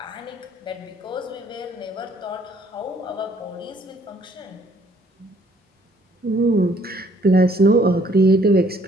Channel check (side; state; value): both; normal; correlation 0.63